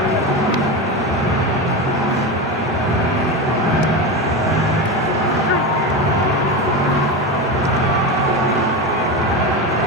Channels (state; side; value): normal; both; correlation 0.19